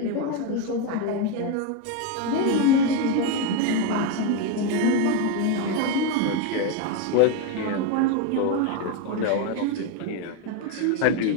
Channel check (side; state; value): both; different; correlation 0.03